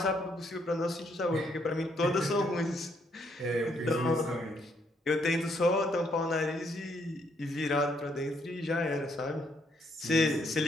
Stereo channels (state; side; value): normal; both; correlation 0.72